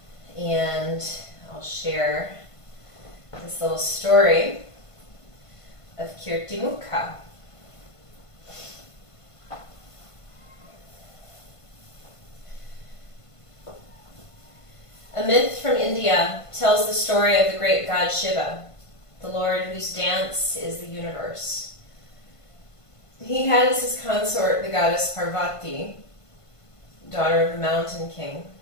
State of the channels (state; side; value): late; right; 1.5 ms